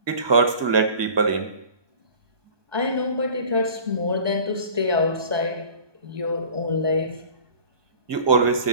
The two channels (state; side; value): late; left; 1.2 ms